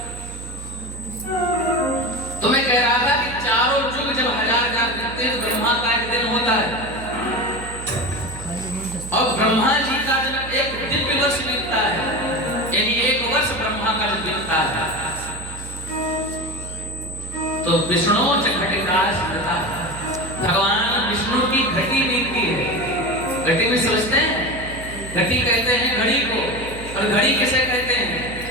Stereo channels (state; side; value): noise; right; hum, 12 dB below the sound